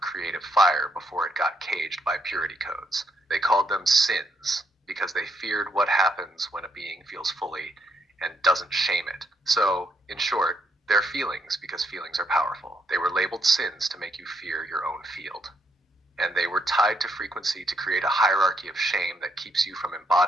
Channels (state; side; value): normal; both; correlation 0.75